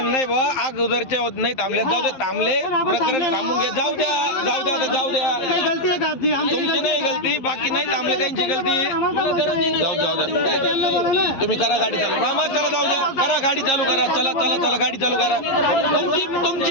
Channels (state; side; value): late; right; 11 ms